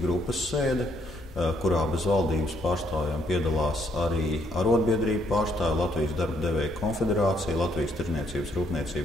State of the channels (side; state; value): both; normal; correlation 0.71